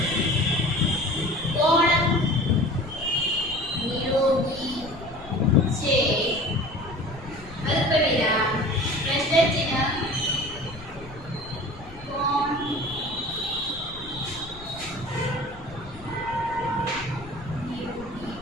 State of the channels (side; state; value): left; noise; rumble, 17 dB below the sound